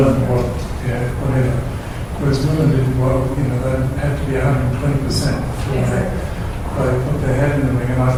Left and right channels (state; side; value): identical; both; correlation 1.00